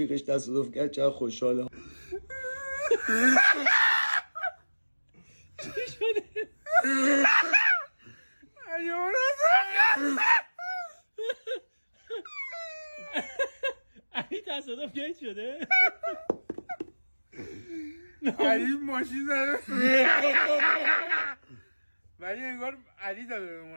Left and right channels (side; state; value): both; inverted; correlation -1.00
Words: تصادف کرد چقدر خوشحاله. چی شده؟ علی تصادف گیت شده؟ علی ماشین زده ولی انگار علی داده به